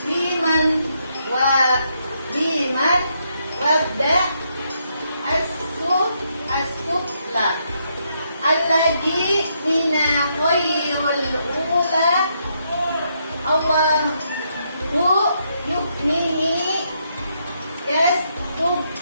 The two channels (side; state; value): both; inverted; correlation -0.77